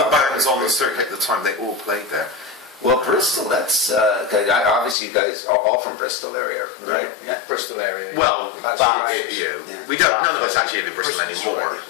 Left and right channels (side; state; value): right; drops out; at 5.0 s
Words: bands on the circuit at the time, they all played there. Well, Bristol, that's obviously you guys are all from Bristol area, right? Yeah. Bristol area. Well, we don't. None of us actually live in Bristol anymore.